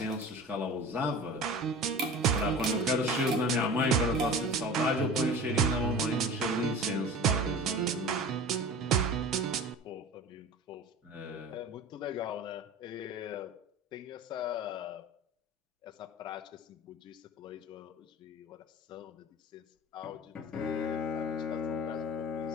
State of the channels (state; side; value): normal; both; correlation 0.37